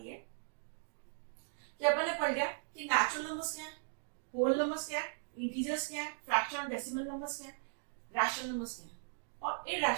है कि अपन ने पढ़ लिया कि नेचुरल नंबर्स क्या है, होल नंबर्स क्या है, इंटीजर्स क्या है, फ्रैक्शन और डेसिमल नंबर्स क्या है, रैशनल नंबर्स क्या है, और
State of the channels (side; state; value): left; silent; digital silence